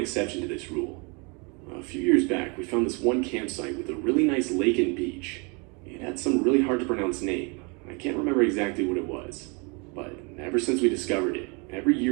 to this rule. A few years back, we found this one campsite with a really nice lake and beach. It had some really hard to pronounce name. I can't remember exactly what it was, but ever since we discovered it, every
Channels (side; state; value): left; quieter; 32.0 dB